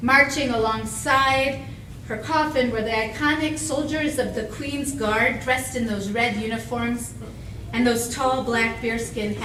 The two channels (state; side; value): identical; both; correlation 1.00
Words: Marching alongside her coffin were the iconic soldiers of the Queen's Guard, dressed in those red uniforms and those tall black bearskin